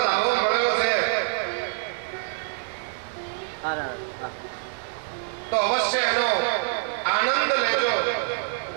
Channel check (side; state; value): left; silent; digital silence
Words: લાવો મળ્યો છે તો અવશ્ય એનો આનંદ લેજો,